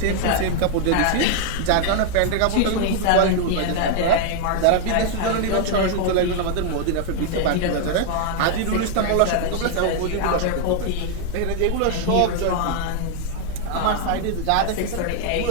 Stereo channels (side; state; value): both; different; correlation 0.00